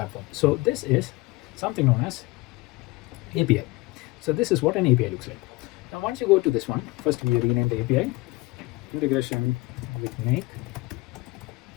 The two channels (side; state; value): right; quieter; 22.1 dB